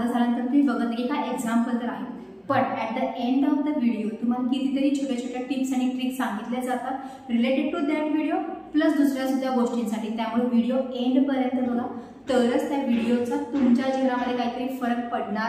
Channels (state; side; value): identical; both; correlation 1.00